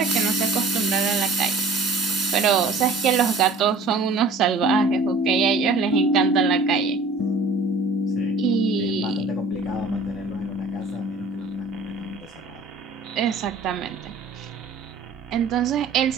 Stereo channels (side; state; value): left; quieter; 3.5 dB